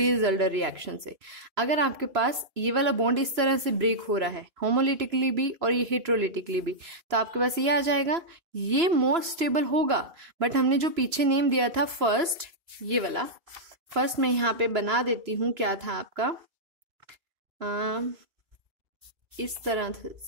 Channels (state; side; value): late; left; 3.0 ms